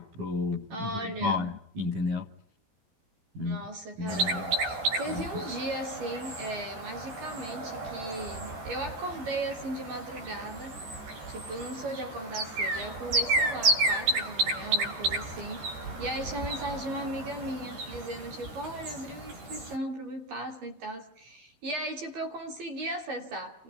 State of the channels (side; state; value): left; late; 13 ms